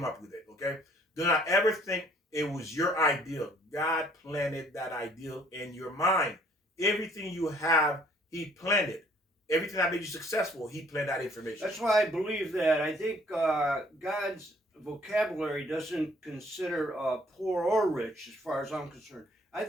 up with it, okay? Do not ever think it was your ideal. God planted that ideal in your mind. Everything you have, he planted. Everything that made you successful, he planted that information. That's why I believe that. I think God's vocabulary doesn't consider poor or rich, as far as I'm concerned. I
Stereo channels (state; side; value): normal; both; correlation 0.60